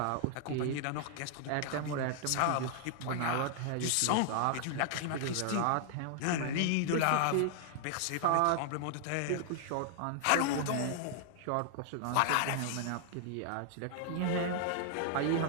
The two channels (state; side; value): different; both; correlation 0.00